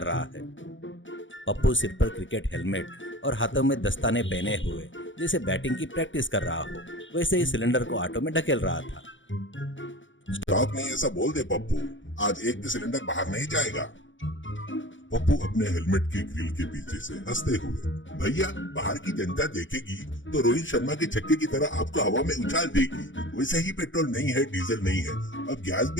रहा है। पप्पू सिर पर क्रिकेट हेलमेट और हाथों में दस्ताने पहने हुए जैसे बैटिंग की प्रैक्टिस कर रहा हो, वैसे ही सिलेंडर को ऑटो में ढकेल रहा था। स्टॉक नहीं ऐसा बोल दे पप्पू, आज एक भी सिलेंडर बाहर नहीं जाएगा। पप्पू अपने हेलमेट के ग्रिल के पीछे से हंसते हुए, भैया बाहर की जनता देखेगी तो रोहित शर्मा के छक्के की तरह आपको हवा में उछाल देगी। वैसे ही पेट्रोल नहीं है, डीजल नहीं है, अब गैस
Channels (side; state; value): right; late; 0.56 ms